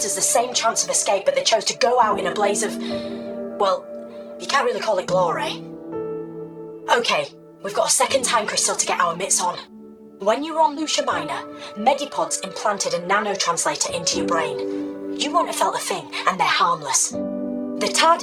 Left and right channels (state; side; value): identical; both; correlation 1.00